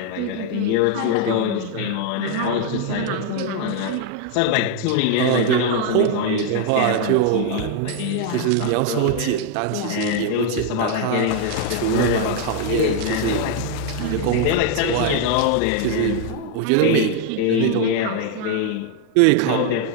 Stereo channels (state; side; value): different; both; correlation 0.01